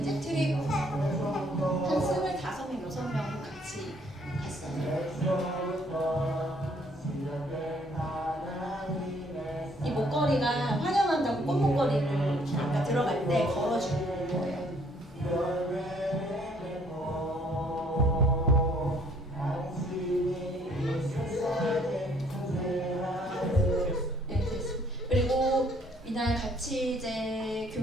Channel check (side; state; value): both; normal; correlation 0.63